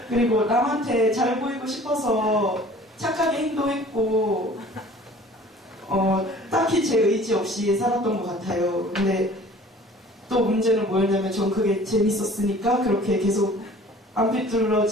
그리고 남한테 잘 보이고 싶어서 착하게 행동했고, 딱히 제 의지 없이 살았던 것 같아요. 근데 또 문제는 뭐였냐면 전 그게 재밌었으니까 그렇게 계속 안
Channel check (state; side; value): normal; both; correlation 0.48